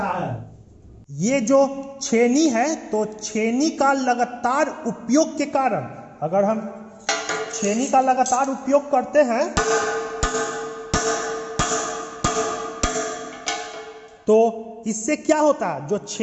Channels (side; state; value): both; identical; correlation 1.00